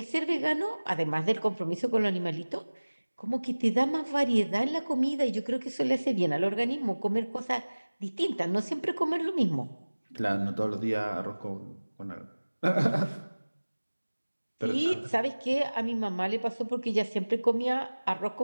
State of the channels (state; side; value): inverted; both; correlation -1.00